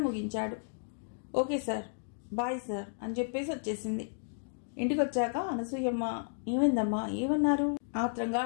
ముగించాడు. ఓకే సార్, బాయ్ సార్ అని చెప్పేసి వచ్చేసింది. ఇంటికి వచ్చాక అనసూయమ్మ, ఏమైందమ్మా, ఏమన్నారు ఆత్రంగా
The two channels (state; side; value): silent; right; digital silence